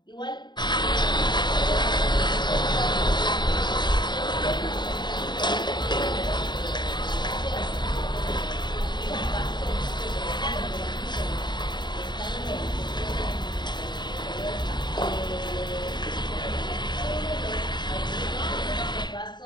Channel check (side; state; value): right; late; 0.21 ms